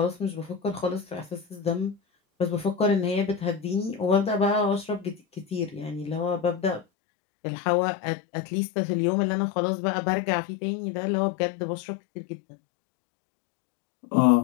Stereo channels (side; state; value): right; drops out; at 6.9 s